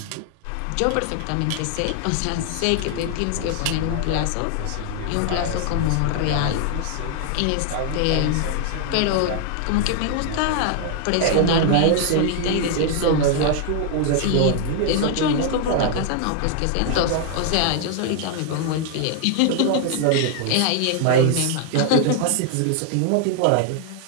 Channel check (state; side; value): different; both; correlation 0.00